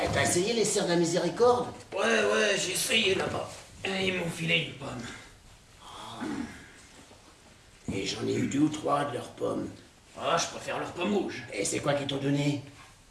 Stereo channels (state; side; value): identical; both; correlation 1.00